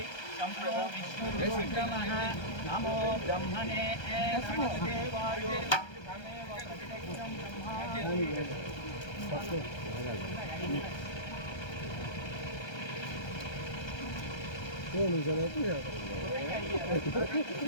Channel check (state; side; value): late; right; 1.3 ms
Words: యం విష్ణుర్విక్రమః. నమో బ్రహ్మణే దేవాయ తమేవ ప్రతిదక్షం